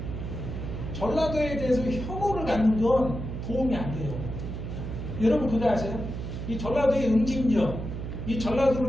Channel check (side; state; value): right; noise; hum, 6 dB below the sound